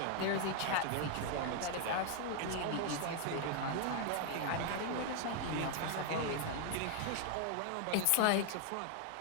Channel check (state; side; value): different; both; correlation 0.00